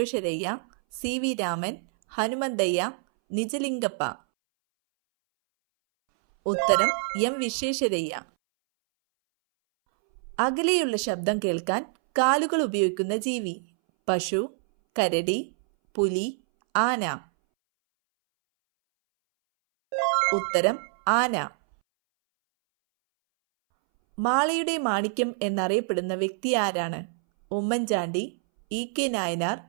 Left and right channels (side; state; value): left; silent; 61 dB below the other